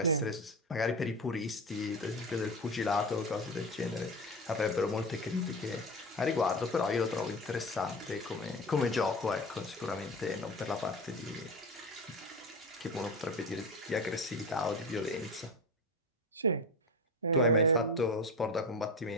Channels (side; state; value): both; normal; correlation 0.25